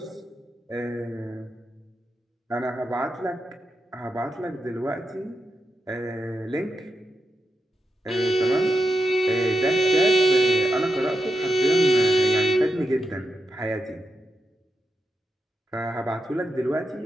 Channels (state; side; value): normal; both; correlation 0.87